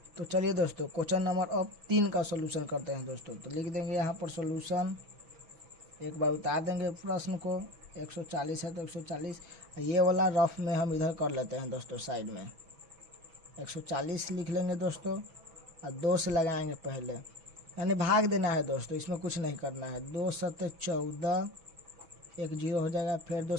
तो चलिए दोस्तों क्वेश्चन नंबर अब 3 का सॉल्यूशन करते हैं दोस्तों। तो लिख देंगे यहाँ पर सॉल्यूशन, एक बार उतार देंगे प्रश्न को। 140 है तो 140, ये वाला रफ में हम इधर कर लेते हैं दोस्तों साइड में। 140 लिख लेंगे दोस्तों और 2 से लगाएंगे पहले, यानी भाग देना है दोस्तों, इसमें कुछ नहीं करना है। 2 7 14, 1 0 हो जाएगा। फिर 2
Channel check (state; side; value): late; left; 6.1 ms